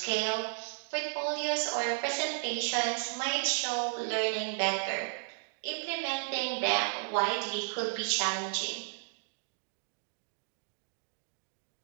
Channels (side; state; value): left; silent; digital silence